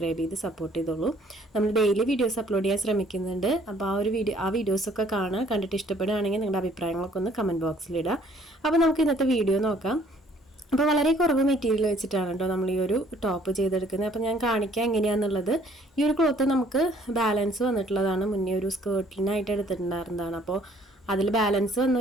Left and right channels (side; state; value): both; normal; correlation 0.60